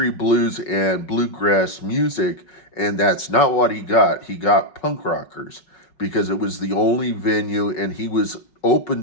bluegrass music, and that's not what he got. He got punk rockers because it was the only venue, and he was open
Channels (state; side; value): late; right; 5.4 ms